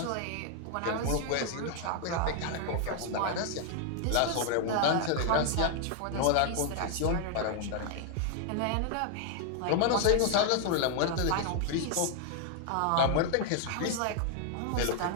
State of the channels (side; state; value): both; different; correlation 0.00